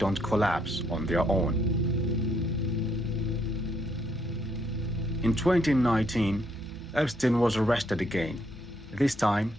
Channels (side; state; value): both; normal; correlation 0.72